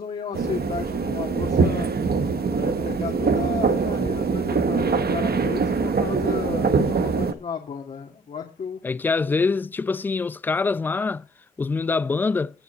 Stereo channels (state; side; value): normal; both; correlation 0.55